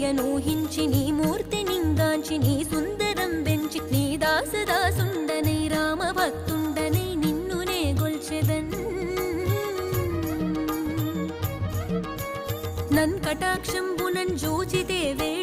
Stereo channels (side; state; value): both; identical; correlation 1.00